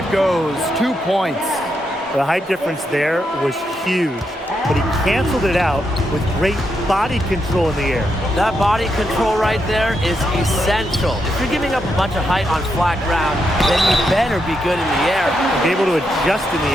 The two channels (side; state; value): both; normal; correlation 0.82